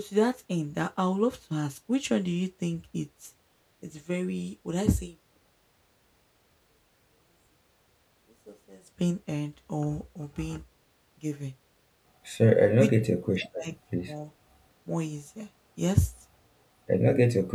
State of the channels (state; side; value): identical; both; correlation 1.00